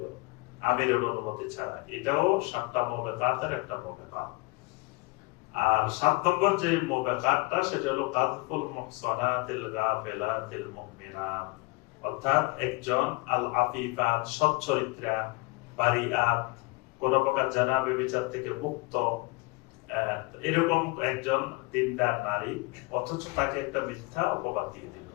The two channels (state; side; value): quieter; right; 25.9 dB